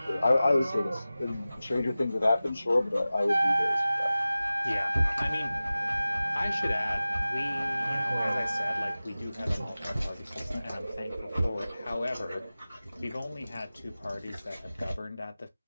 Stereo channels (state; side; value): inverted; both; correlation -0.96